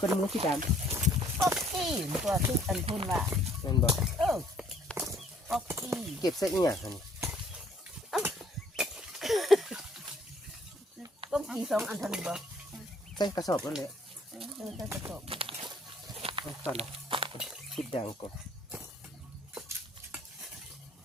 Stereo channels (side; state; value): both; normal; correlation 0.62